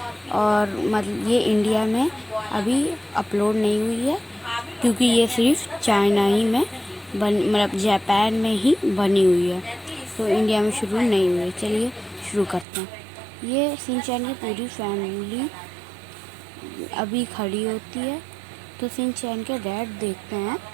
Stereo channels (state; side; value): drops out; left; at 12.7 s